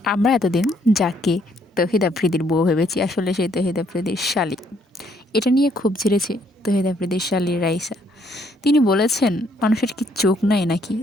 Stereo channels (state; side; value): normal; both; correlation 0.68